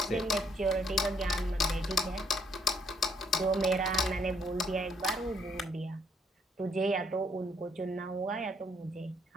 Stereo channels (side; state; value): both; normal; correlation 0.69